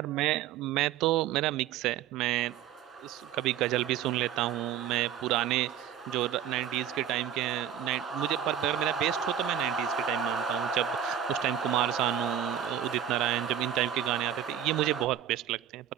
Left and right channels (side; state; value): left; quieter; 9.9 dB